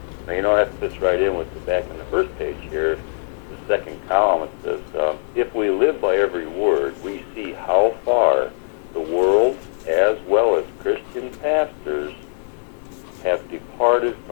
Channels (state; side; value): silent; right; 65 dB below the other